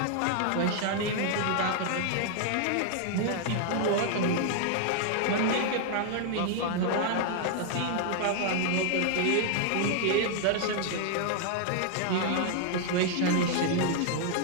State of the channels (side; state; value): both; different; correlation 0.00